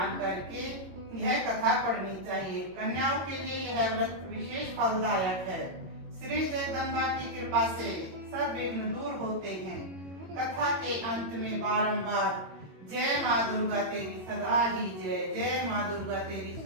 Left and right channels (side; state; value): left; late; 22 ms